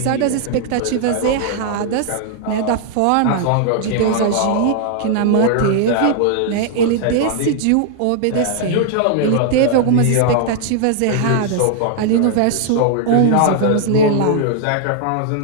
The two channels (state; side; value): different; both; correlation 0.00